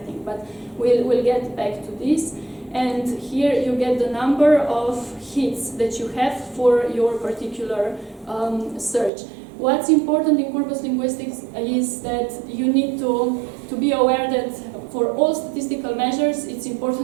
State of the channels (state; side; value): drops out; left; at 9.1 s